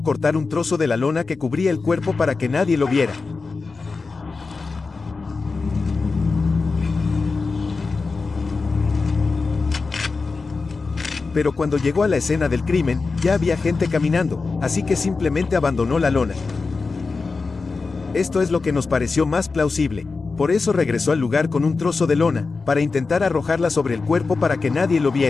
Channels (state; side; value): quieter; right; 4.2 dB